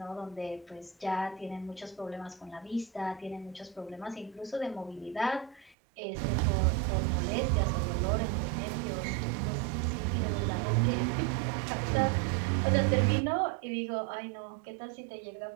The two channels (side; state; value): left; drops out; at 5.8 s